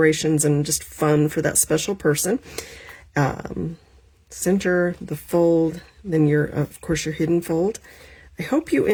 and just fun for that special person. Center, the fold, then of course your hidden fold. I hope you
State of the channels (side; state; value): both; identical; correlation 1.00